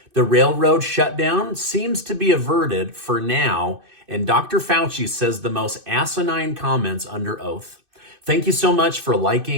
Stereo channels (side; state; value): left; late; 2.6 ms